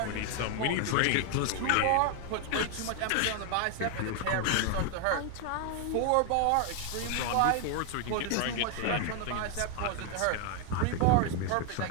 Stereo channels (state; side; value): different; both; correlation 0.01